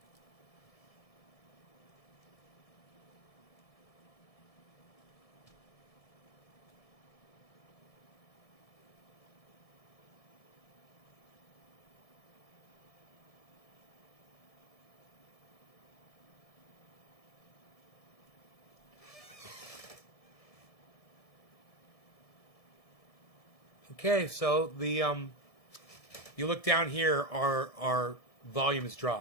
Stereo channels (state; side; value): late; right; 1.7 ms